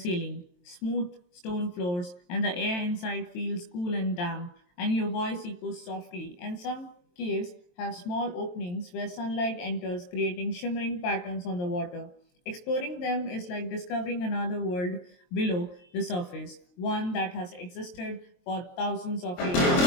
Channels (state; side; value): late; right; 23 ms